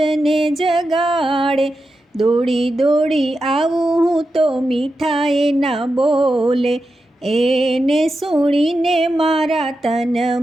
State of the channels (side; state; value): both; normal; correlation 0.89